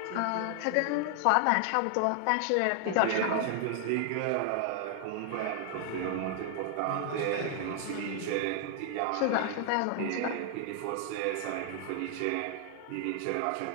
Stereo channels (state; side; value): different; both; correlation 0.00